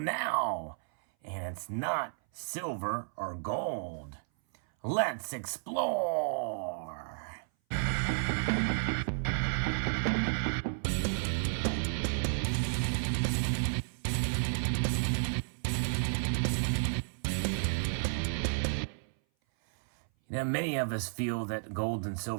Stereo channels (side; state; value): left; silent; 56 dB below the other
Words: and it's not silver or gold. Let's explore. Now, many of us feel that gold and